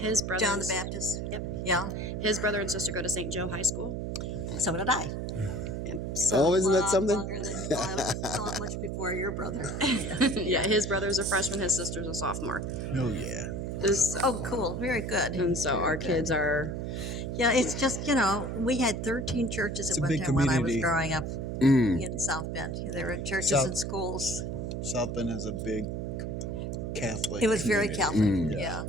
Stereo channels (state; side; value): noise; right; hum, 4 dB below the sound